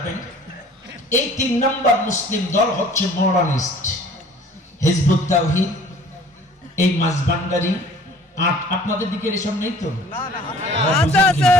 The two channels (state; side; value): normal; both; correlation 0.50